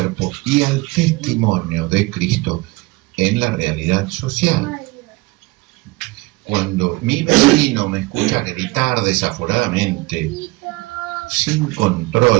y al testimonio de Cristo en la realidad social. Cuando mi vecino me escucha gritar desaforadamente, sin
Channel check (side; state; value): left; quieter; 23.0 dB